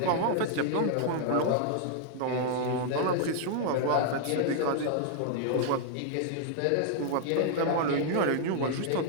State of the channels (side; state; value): both; different; correlation -0.01